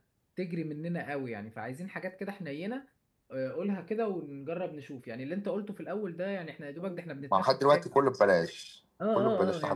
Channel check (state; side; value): identical; both; correlation 1.00